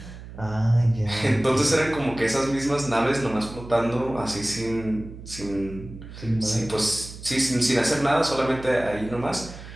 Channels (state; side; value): noise; right; hum, 14 dB below the sound